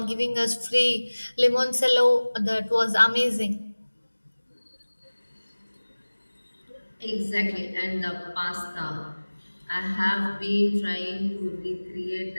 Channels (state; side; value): inverted; both; correlation -1.00